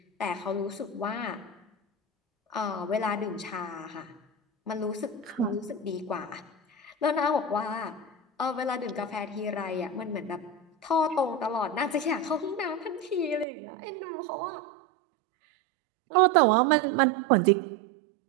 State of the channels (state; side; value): drops out; left; at 13.5 s